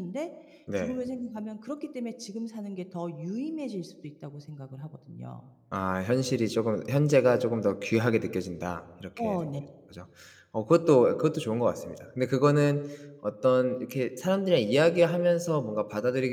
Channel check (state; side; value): identical; both; correlation 1.00